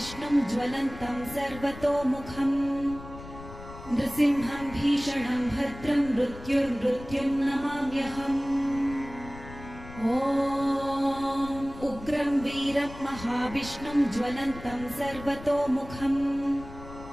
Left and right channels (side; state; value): left; noise; rumble, 14 dB below the sound